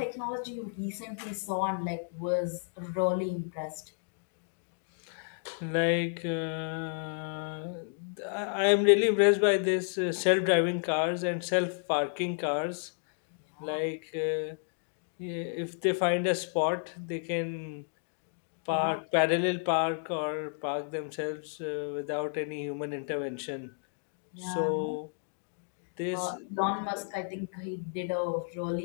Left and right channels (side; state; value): right; silent; digital silence